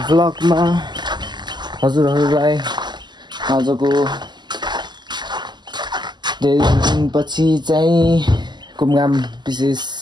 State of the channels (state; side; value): late; left; 0.21 ms